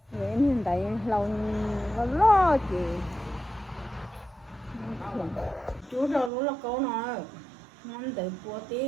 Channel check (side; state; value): left; drops out; at 6.3 s